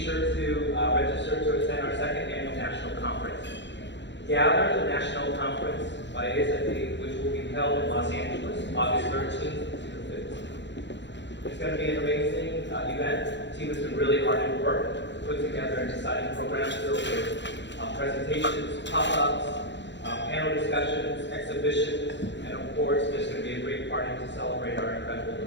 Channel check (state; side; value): late; right; 0.52 ms